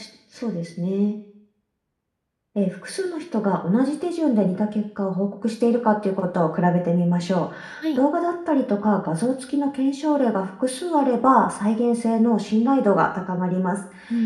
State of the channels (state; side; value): identical; both; correlation 1.00